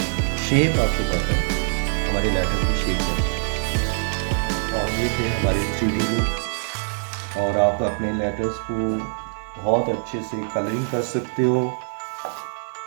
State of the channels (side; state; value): left; silent; 59 dB below the other